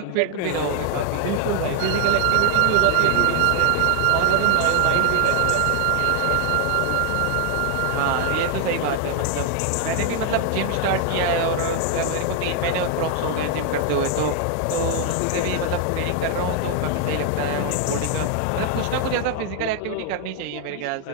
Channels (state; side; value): different; both; correlation 0.00